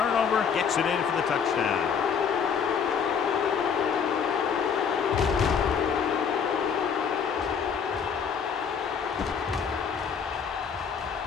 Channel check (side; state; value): right; quieter; 6.8 dB